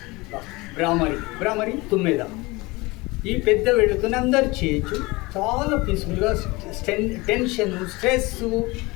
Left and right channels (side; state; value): right; quieter; 23.2 dB